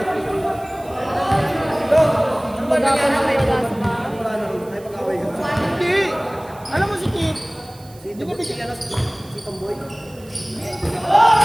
Magapan na kayo sa mga. Hindi. Alam mo si Kit? Hindi ko bigyan si Tomboy.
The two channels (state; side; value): noise; right; hiss, 24 dB below the sound